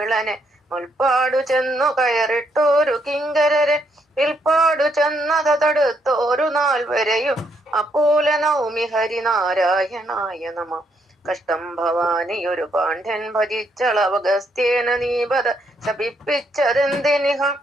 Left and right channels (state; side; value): normal; both; correlation 0.75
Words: മുൽപ്പാടു ചെന്നു കയറിട്ടോരു കിങ്കരരെ വിൽപ്പാടു ചെന്നത് തടുത്തോരു നാൾ വരെയും അപ്പോല നൗമി ഹരിനാരായണായ നമ. കഷ്ടം ഭവാനിയൊരു പാണ്ഡ്യൻ ഭജിച്ചളവഗസ്ത്യേന നീപത ശപിപ്പിച്ചതെന്തിനിഹ